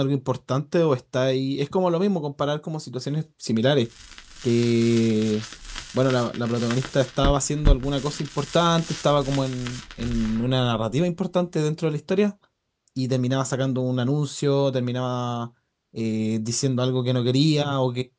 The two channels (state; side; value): identical; both; correlation 1.00